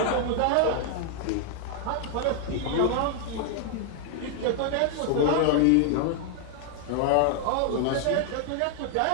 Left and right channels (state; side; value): different; both; correlation 0.00